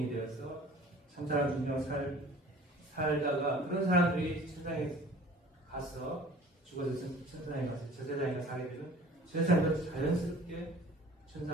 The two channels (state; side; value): normal; both; correlation 0.47